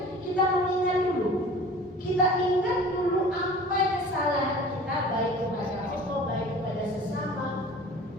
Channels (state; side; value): normal; both; correlation 0.43